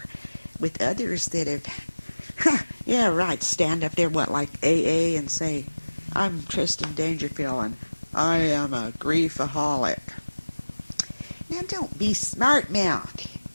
with others that have, yeah, right, stand up there, like AA, and say, I'm Tristan Dangerfield, and I am a griefaholic. Now, don't be smart-mouthed.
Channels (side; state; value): both; inverted; correlation -1.00